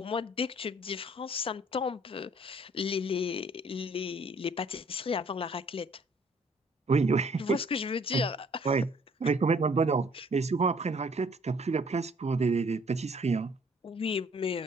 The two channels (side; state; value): both; normal; correlation 0.59